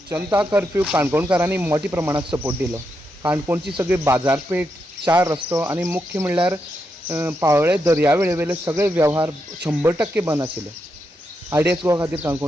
जनता curfew काणकोणकारांनी मोठ्या प्रमाणात support दिलो. काणकोणची सगळी बाजारपेठ, 4 रस्तो आणि मुख्य म्हणल्यार पाळोळे दर्यावेळेवेले सगळे वेव्हार 100% बंद आशिल्ले. RDXGOA खातीर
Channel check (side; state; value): both; normal; correlation 0.84